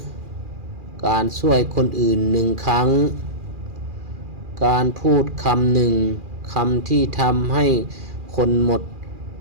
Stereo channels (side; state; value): left; late; 2.4 ms